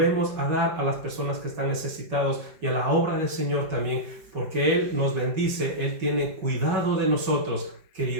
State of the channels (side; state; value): left; late; 5.4 ms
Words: a dar a las personas que están necesitados y a la obra del Señor también, porque Él nos bendice, Él tiene cuidado de nosotros,